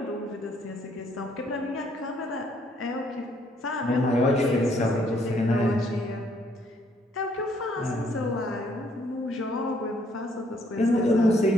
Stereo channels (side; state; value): both; normal; correlation 0.67